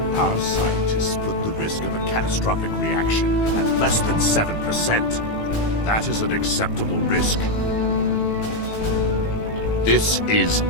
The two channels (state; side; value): late; right; 18 ms